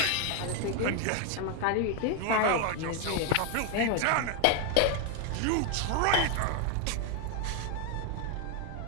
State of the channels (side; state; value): both; different; correlation 0.01